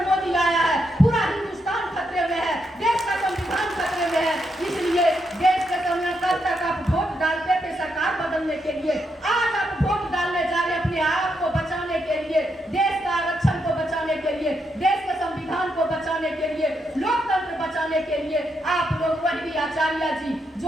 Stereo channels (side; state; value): both; normal; correlation 0.80